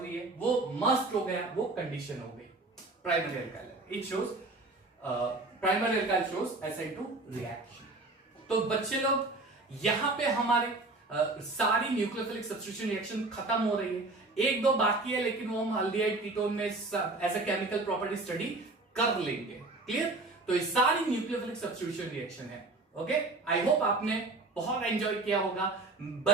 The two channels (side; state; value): left; quieter; 3.1 dB